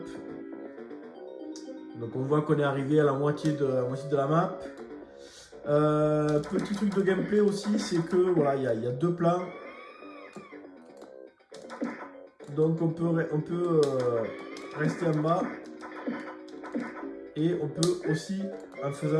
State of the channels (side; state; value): both; identical; correlation 1.00